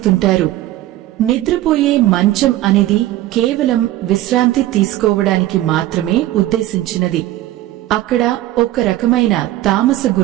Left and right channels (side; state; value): left; quieter; 15.1 dB